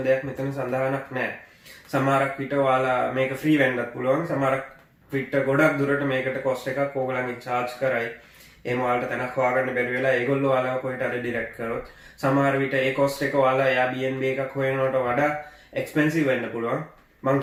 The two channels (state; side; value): identical; both; correlation 1.00